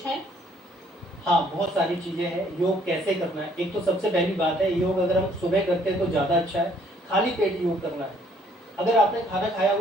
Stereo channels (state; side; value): normal; both; correlation 0.64